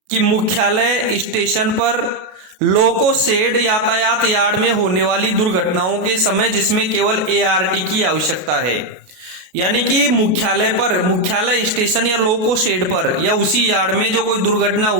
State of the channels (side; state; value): left; late; 33 ms